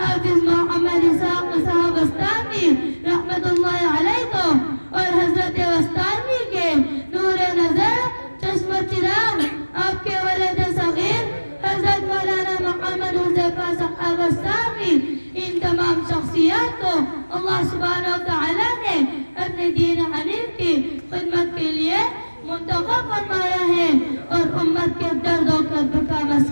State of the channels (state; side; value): inverted; both; correlation -1.00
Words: محمد اسحاق صاحب بستانوی رحمت اللہ علیہ کو اور حضرت بستانوی کے نور نظر چشم چراغ آپ کے ولد صغیر حضرت مولانا محمد حذیفہ صاحب بستانوی، ان تمام شخصیات کو اللہ سبحانہ و تعالی نے اپنے دین حنیف کی خدمت کے لیے منتخب فرمایا ہے اور امت کے درد و کرب کا